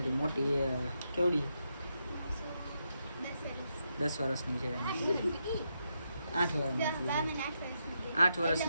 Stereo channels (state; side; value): inverted; both; correlation -0.83